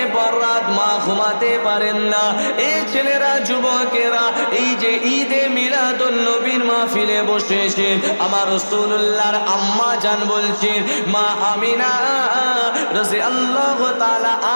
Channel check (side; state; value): both; inverted; correlation -1.00